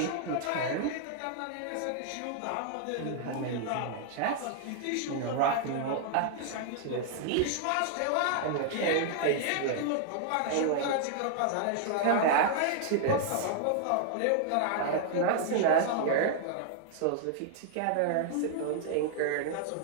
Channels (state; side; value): different; both; correlation -0.01